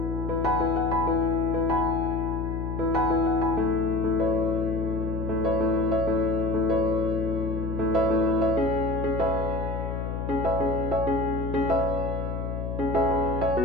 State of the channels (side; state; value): left; noise; hum, 3 dB below the sound